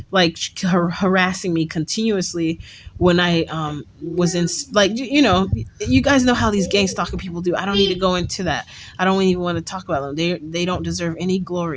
harassing me continuously when I was in, like, you guys know how these gang stalking people do. I don't need to go into that. I don't even want to talk about them. They don't deserve any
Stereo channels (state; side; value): identical; both; correlation 1.00